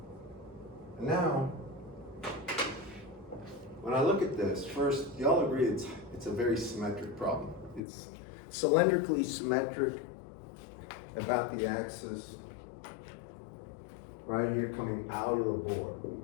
And now, when I look at this, first, y'all agree it's a very symmetric problem. It's cylindrically symmetric about the axis right here coming out of the board,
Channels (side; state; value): right; drops out; at 7.8 s